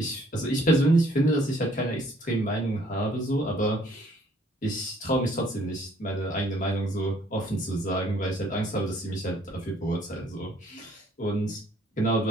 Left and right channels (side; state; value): both; normal; correlation 0.62